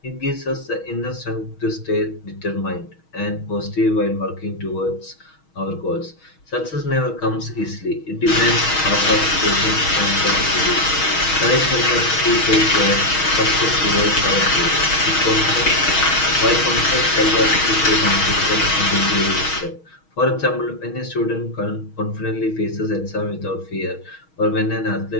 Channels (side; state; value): right; late; 6.3 ms